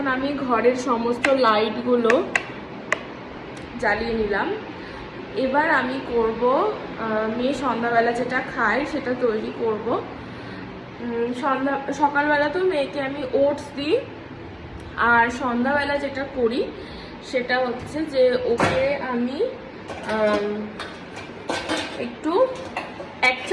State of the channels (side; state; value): both; identical; correlation 1.00